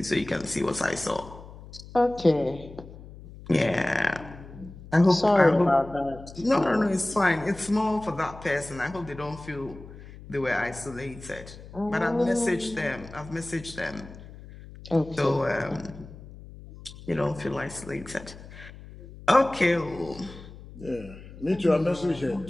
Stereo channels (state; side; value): noise; left; hum, 16 dB below the sound